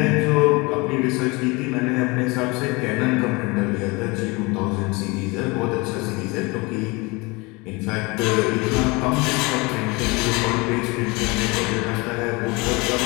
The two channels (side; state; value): right; quieter; 26.0 dB